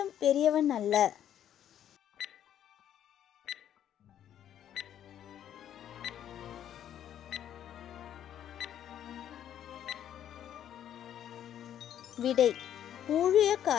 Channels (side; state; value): right; quieter; 10.4 dB